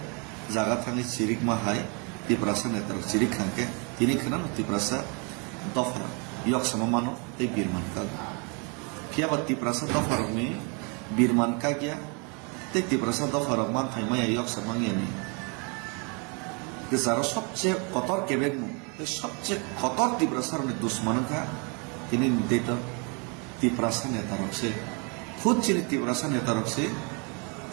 জায়গা থাঙি চিরিক মাহাই তিপ্রাসা নেতার চিরিক খানকে তিনি খানান তিপ্রাসা দফা ইয়ক সমমানো এই বীরমান কাগ কিয়াবা তিপ্রাসা দফারকনি বীরমান কাগিয়া তে তিপ্রাসা দফারক মান থাইমায়া ইয়ক সমাঙ্গিয়ানি যারা সবচেয়ে কতর কেবেগমু সবচেয়ে কতর তিপ্রাসার দুশ্মনকা তিনি নির্দেত তিপ্রাসা নেতারকসে খুদ চিনি তিপ্রাসা নেতারকসে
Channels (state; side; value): quieter; left; 34.1 dB